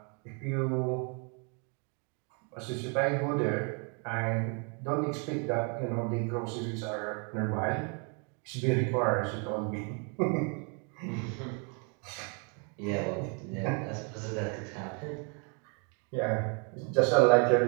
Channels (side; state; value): left; quieter; 36.6 dB